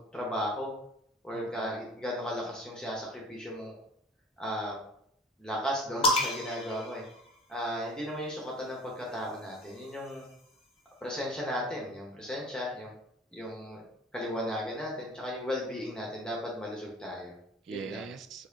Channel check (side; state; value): both; normal; correlation 0.44